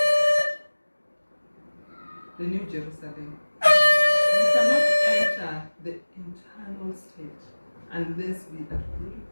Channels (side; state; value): both; inverted; correlation -1.00